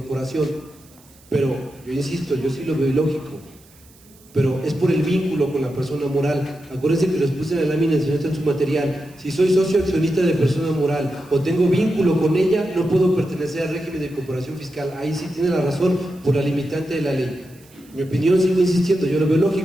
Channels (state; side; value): noise; right; hiss, 27 dB below the sound